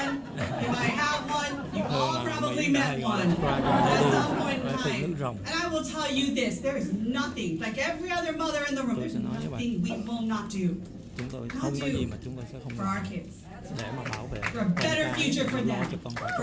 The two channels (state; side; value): identical; both; correlation 1.00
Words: you might have one, you've all probably met one at some point in time. And I will tell you this, there is nothing, like every other mother in the room, there's nothing we will not do. For our kids. For a better future for them.